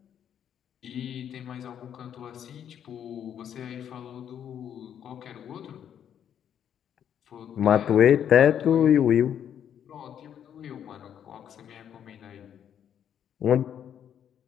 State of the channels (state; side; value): quieter; right; 9.2 dB